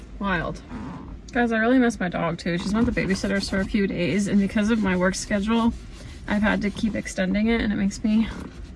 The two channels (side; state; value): both; identical; correlation 1.00